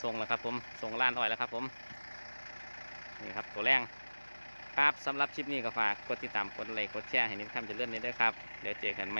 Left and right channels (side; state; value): both; inverted; correlation -1.00